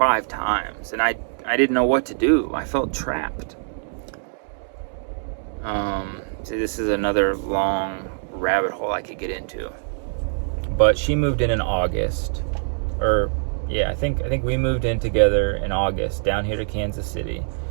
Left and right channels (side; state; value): left; silent; digital silence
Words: times. And I didn't know what to do. I felt trapped. See, this is another long rabbit hole I could get into. But she moved in August. I think we moved in together in August down here to Kansas City.